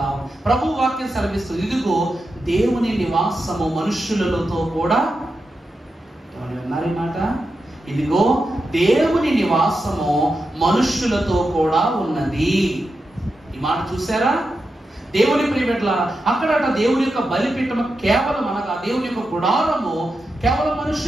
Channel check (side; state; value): both; normal; correlation 0.89